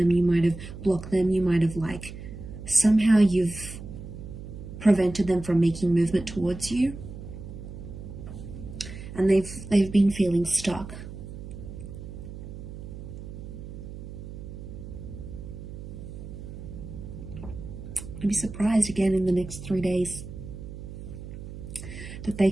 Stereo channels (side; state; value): right; noise; hum, 11 dB below the sound